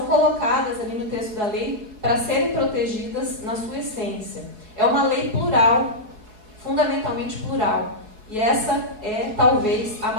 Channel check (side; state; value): left; late; 4.7 ms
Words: colocadas ali no texto da lei para serem protegidas na sua essência. É uma lei plural, fundamentalmente plural. E essa é, talvez, a